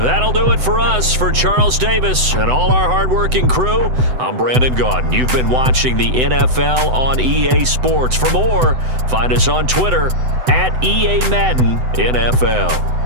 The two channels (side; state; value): left; late; 7.9 ms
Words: do it for us. For Charles Davis and all our hardworking crew, I'm Brandon Gaudin. You've been watching the NFL on EA Sports. For more, find us on Twitter at EA Madden NFL.